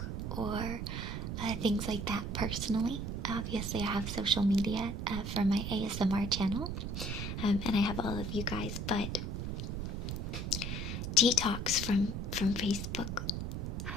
or things like that personally. Obviously, I have social media for my ASMR channel, and I have all of you guys, but detox from Facebook.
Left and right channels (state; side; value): noise; right; rumble, 3 dB below the sound